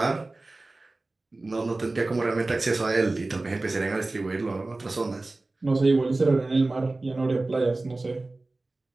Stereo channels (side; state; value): left; quieter; 3.1 dB